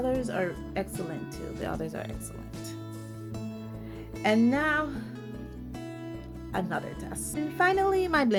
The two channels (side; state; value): both; identical; correlation 1.00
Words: are excellent too. The others are excellent. And now another test. And finally, my